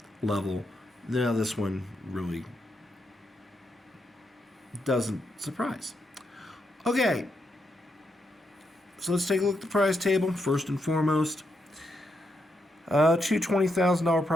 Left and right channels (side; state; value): both; normal; correlation 0.81